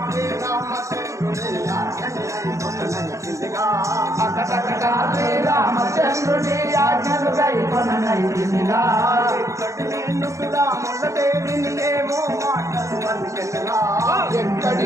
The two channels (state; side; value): late; left; 0.15 ms